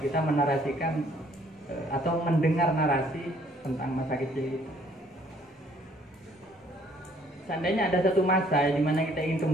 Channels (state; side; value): normal; both; correlation 0.62